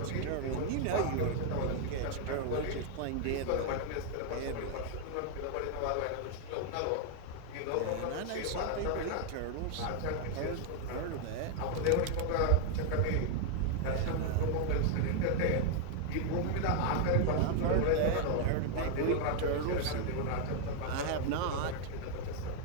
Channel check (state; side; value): different; both; correlation 0.00